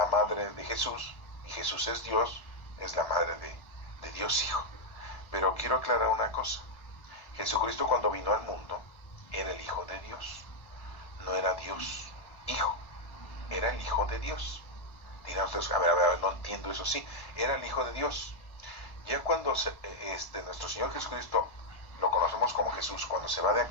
madre de Jesús, y Jesús es Dios, es la madre de Dios Hijo. Pero quiero aclarar una cosa. Jesucristo cuando vino al mundo era el Hijo de Dios. No era Dios Hijo, era el Hijo de Dios. Dirán ustedes, a ver, no entiendo eso. Sí, era el Hijo de Dios. Ya cuando nuestro Señor Jesucristo lo conocemos como Jesús, cuando se va de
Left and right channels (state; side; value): late; right; 1.3 ms